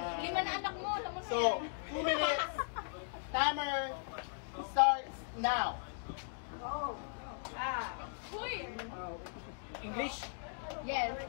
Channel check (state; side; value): silent; right; digital silence